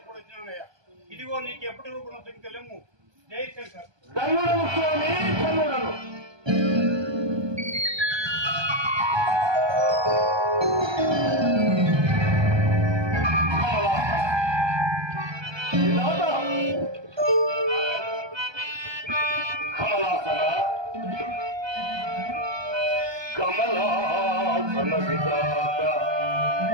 ఇదిగో నీకు ఎప్పటి రూపం సంఖ్యలేము. జై శంకర్. ధన్యుడను స్వామి, ధన్యుడను. కమలాసన విధాత,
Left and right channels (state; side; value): late; left; 1.2 ms